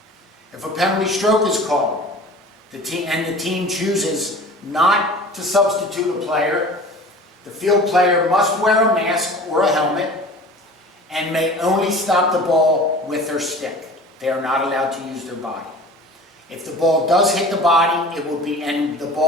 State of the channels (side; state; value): both; normal; correlation 0.41